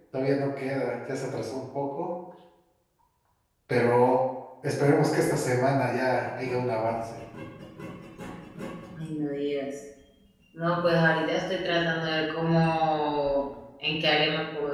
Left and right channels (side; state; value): both; identical; correlation 1.00